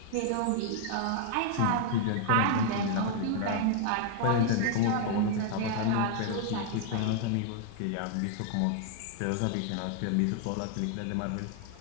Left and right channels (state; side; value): different; both; correlation 0.00